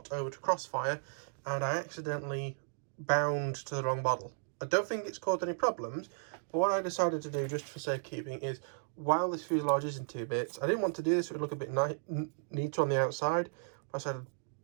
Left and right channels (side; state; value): left; silent; digital silence